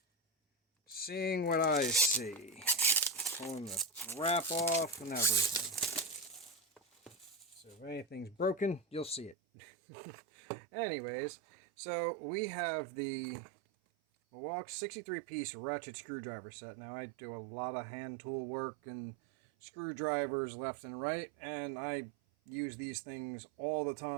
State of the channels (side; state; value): left; drops out; at 9.3 s